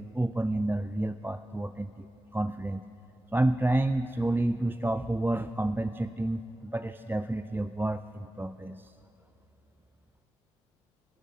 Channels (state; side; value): normal; both; correlation 0.96